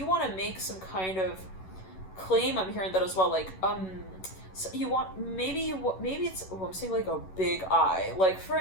want to make some kind of claim. I'm hearing that as well. Like, so you want, maybe it's, I'm saying like a big eye. Like, for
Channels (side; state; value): right; late; 11 ms